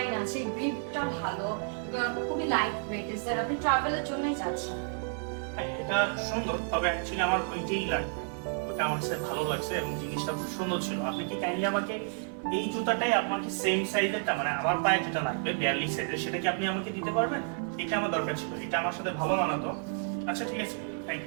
আছে, গ্রিপটা ভালো এবং খুবই লাইট ওয়েট। স্যার, আপনি ট্রাভেলের জন্যই যাচ্ছেন। হ্যাঁ, এটা সুন্দর, তবে অ্যাকচুয়ালি আমার ওইটাই লাগবে। ওটা আমার কাছে ভালো লাগছে এবং জিনিসটা খুব সুন্দর ছিল। আপনি কি কাইন্ডলি আমাকে এই জুতাটাই আপনাকে সেম সাইজেরটা, মানে আমার পায়ে যেটা লাগবে 42 সাইজের, সেটা কি আপনি আমাকে দিতে পারবেন? এটা আমার দরকার ছিল, এটা আমার সাথে ভালো মানাতো। আচ্ছা ঠিক আছে, থ্যাংক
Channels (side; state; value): left; silent; 57 dB below the other